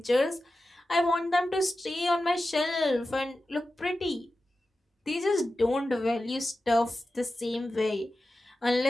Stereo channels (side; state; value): both; normal; correlation 0.93